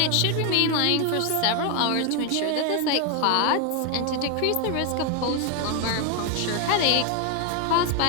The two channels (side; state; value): both; different; correlation 0.01